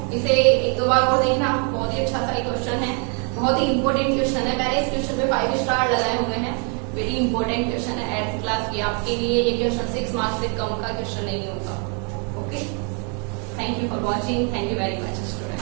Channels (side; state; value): left; quieter; 38.5 dB